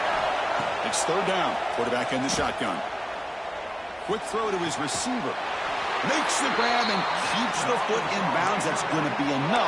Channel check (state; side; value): identical; both; correlation 1.00